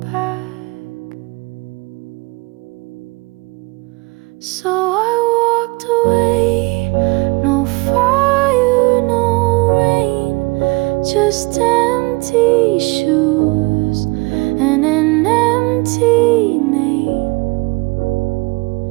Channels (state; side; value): quieter; left; 25.9 dB